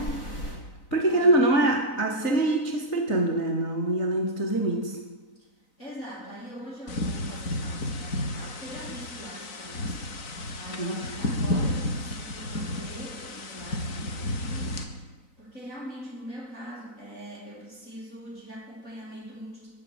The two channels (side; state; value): right; late; 3.9 ms